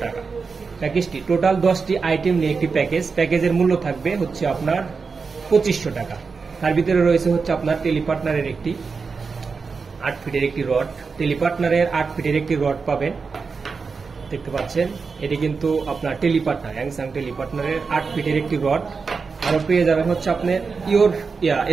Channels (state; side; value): quieter; left; 4.9 dB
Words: টাকা। প্যাকেজটি টোটাল 10টি আইটেম নিয়ে একটি প্যাকেজের মূল্য থাকবে হচ্ছে আপনার 2500 টাকা। তার ভিতরে রয়েছে হচ্ছে আপনার টেলিপার্টনারের একটি 8 ফিটের একটি রড, টেলিপার্টনারের 8 ফিটের একটি রড পাবেন, দেখতে পাচ্ছেন। এটি কিন্তু আপনার টেলিপার্টনার, হ্যাংসাং টেলিপার্টনারের 8 ফিটের একটি রড। আরো পেয়ে যাবেন হচ্ছে আপনার